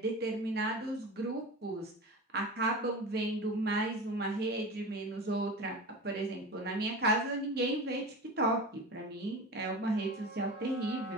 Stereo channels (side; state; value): both; normal; correlation 0.31